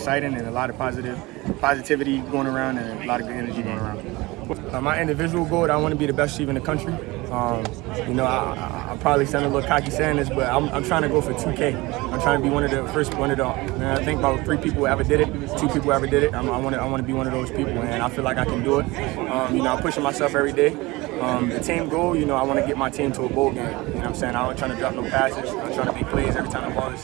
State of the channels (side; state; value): left; quieter; 22.0 dB